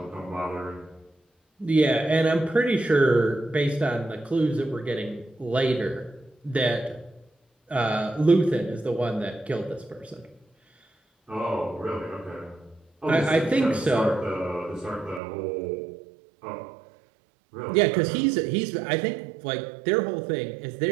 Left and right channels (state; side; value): drops out; left; at 15.2 s